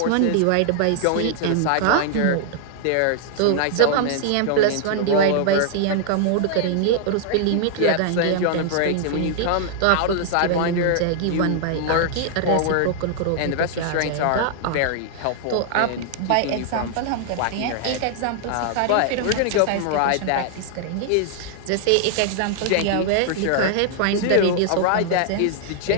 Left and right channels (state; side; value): different; both; correlation 0.00